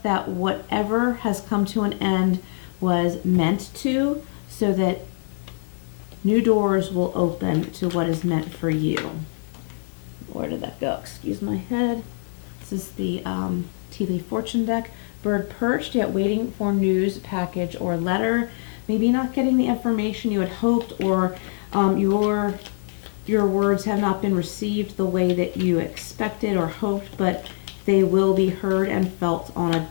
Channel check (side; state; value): right; silent; digital silence